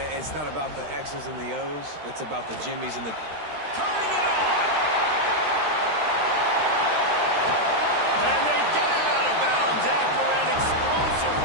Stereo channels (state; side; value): late; left; 13 ms